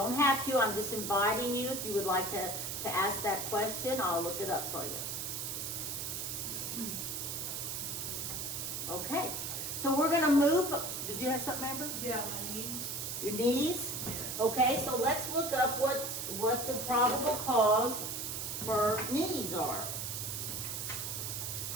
have to. I'm just inviting you. If you would like to ask that question, I'll look it up for you. Okay, so we're going to move. Did you have something, Amber? Yeah, my knees. Your knees? Okay, so let's look up what the probable cause for knees are.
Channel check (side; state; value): right; noise; hiss, 4 dB below the sound